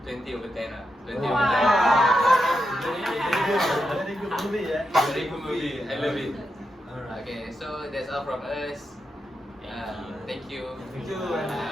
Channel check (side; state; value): both; normal; correlation 0.86